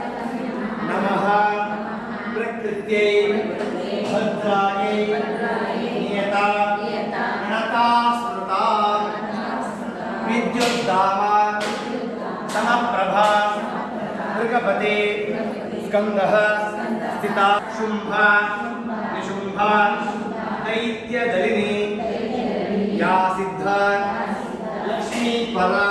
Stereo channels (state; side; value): identical; both; correlation 1.00